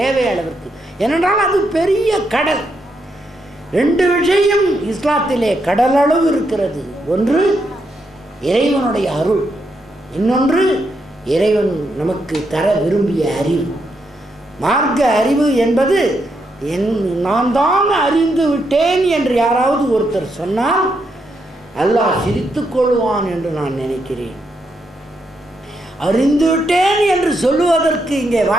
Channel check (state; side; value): normal; both; correlation 0.80